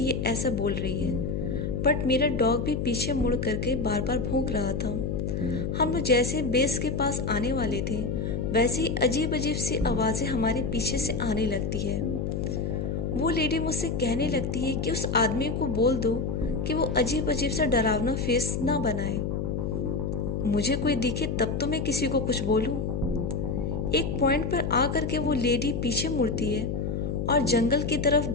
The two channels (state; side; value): noise; left; hum, 1 dB below the sound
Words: ये ऐसा बोल रही है, बट मेरा डॉग भी पीछे मुड़ करके बार बार भौंक रहा था। हम लोग जैसे बेस के पास आने वाले थे, वैसे ही अजीब अजीब सी आवाज़ें हमारे पीछे से आने लगती है। वो लेडी मुझसे कहने लगती है कि उस आदमी को बोल दो कि वो अजीब अजीब सा डरावना फेस ना बनाए। मुझे कोई दिखे तब तो मैं किसी को कुछ बोलूं। एक पॉइंट पर आकर के वो लेडी पीछे मुड़ती है और जंगल की तरफ